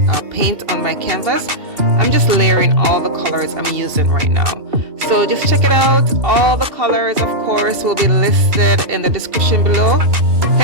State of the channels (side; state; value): left; late; 2.6 ms